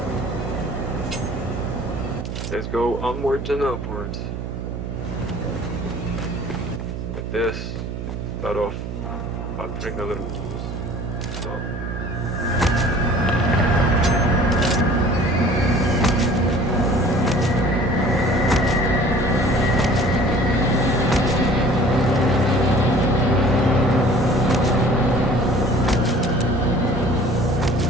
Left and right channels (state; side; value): noise; right; hum, 6 dB below the sound